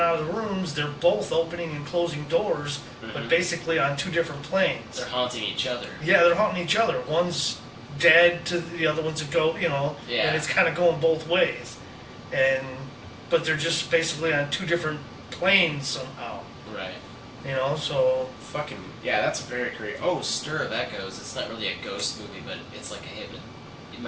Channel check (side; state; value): both; identical; correlation 1.00